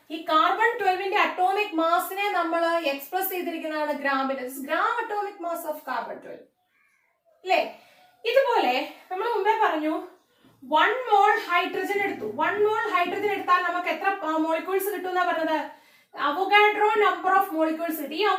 ഈ കാർബൺ 12ന്റെ അറ്റോമിക് മാസിനെ നമ്മൾ എക്സ്പ്രസ് ചെയ്തിരിക്കുന്നതാണ് ഗ്രാമിൽ. Gram atomic mass of carbon 12, അല്ലേ? ഇതുപോലെ നമ്മൾ മുമ്പേ പറഞ്ഞു 1 മോൾ ഹൈഡ്രജൻ എടുത്തു. 1 മോൾ ഹൈഡ്രജൻ എടുത്താൽ നമുക്ക് എത്ര മോളിക്യൂൾസ് കിട്ടും എന്നാ പറഞ്ഞത്? അവഗാഡ്രോ നമ്പർ ഓഫ് മോളിക്യൂൾസ് കിട്ടും. ഈ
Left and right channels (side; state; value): both; identical; correlation 1.00